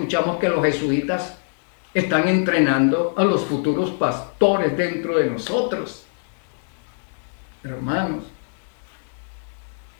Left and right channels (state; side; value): silent; right; digital silence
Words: que los jesuitas están entrenando a los futuros pastores dentro de nosotros. Hermanos,